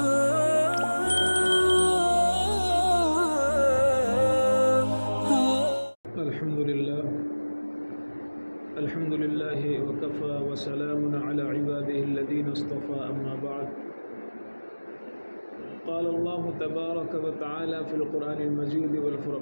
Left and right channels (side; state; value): both; inverted; correlation -1.00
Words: لله وكفى وسلام على عباده الذين اصطفى أما بعد قال الله تبارك وتعالى في القرآن المجيد